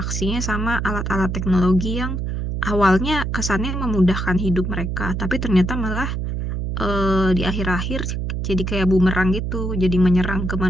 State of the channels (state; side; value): noise; right; hum, 2 dB below the sound